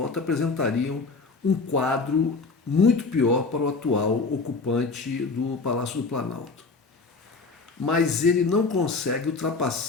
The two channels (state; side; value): quieter; right; 4.1 dB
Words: apresentariam um quadro muito pior para o atual ocupante do Palácio do Planalto. Mas ele não consegue